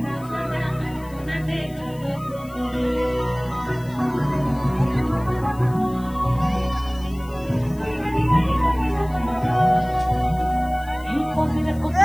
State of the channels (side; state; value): left; noise; hiss, 24 dB below the sound